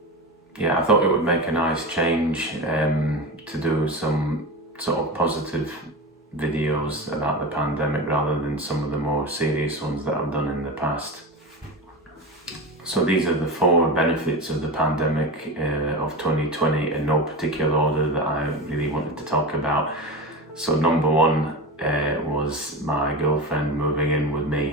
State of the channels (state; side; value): normal; both; correlation 0.24